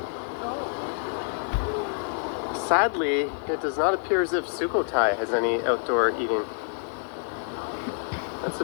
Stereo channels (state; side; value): silent; right; digital silence